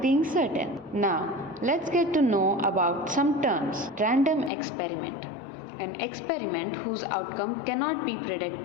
certain. Now, let's get to know about some terms. Random experiment. An experiment whose outcome cannot be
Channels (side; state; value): right; drops out; at 4.5 s